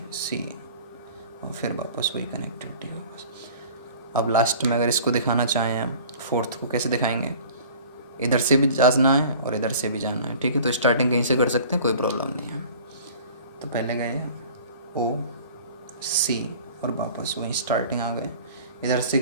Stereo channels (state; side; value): inverted; both; correlation -0.45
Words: सी और फिर वापस वही कनेक्टिविटी वापस। अब लास्ट में अगर इसको दिखाना चाहें हम, फोर्थ को कैसे दिखाएंगे, इधर से भी जाना है और इधर से भी जाना है, ठीक है, तो स्टार्टिंग कहीं से कर सकते हैं, कोई प्रॉब्लम नहीं है। तो पहले गए ओ सी और वापस वहीं स्टार्टिंग आ गए, इधर से